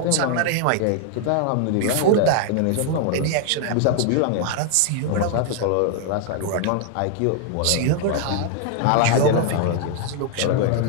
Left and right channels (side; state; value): both; different; correlation 0.00